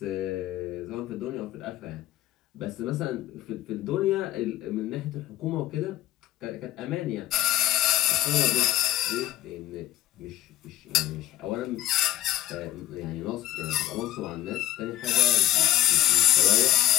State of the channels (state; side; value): quieter; right; 14.1 dB